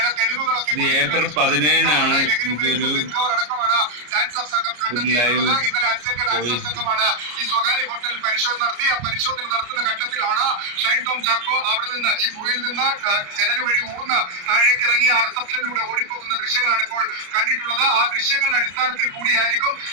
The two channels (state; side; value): late; left; 34 ms